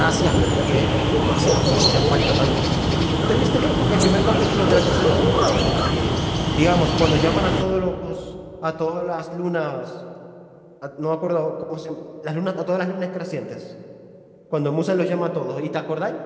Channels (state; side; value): identical; both; correlation 1.00